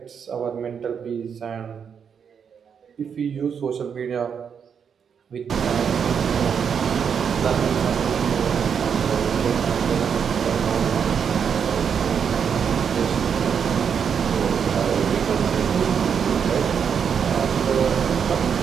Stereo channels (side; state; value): left; quieter; 7.1 dB